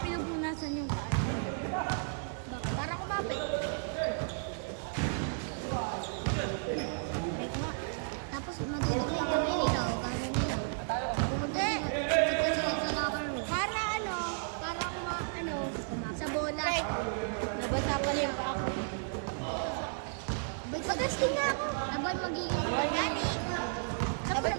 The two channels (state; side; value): silent; left; digital silence